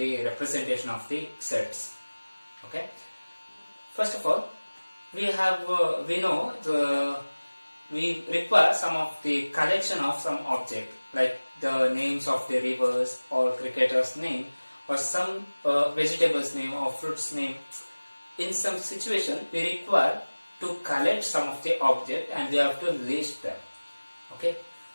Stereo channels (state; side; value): inverted; both; correlation -1.00